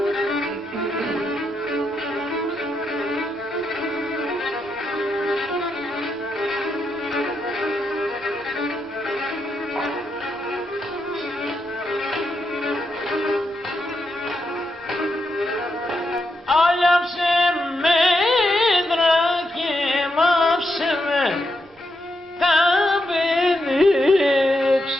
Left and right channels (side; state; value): both; normal; correlation 0.83